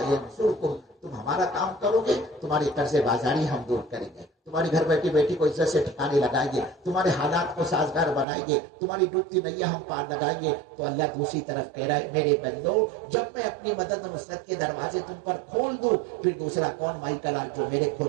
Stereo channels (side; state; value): left; drops out; at 8.2 s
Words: ینصرکم، تم ہمارا کام کرو گے تمہاری قرض بازاری ہم دور کریں گے، تمہاری گھر بیٹھی بیٹی کو عزت سے ٹھکانے لگائیں گے، تمہارے حالات کو سازگار بنائیں گے، تمہاری ڈوبتی نیا ہم پار لگائیں گے۔ تو اللہ دوسری طرف کہہ رہا ہے میرے بندو، جب میں اپنی مدد و نصرت کے دروازے تم پر کھول دوں، پھر دوسرا کون مائی کلال جو میرے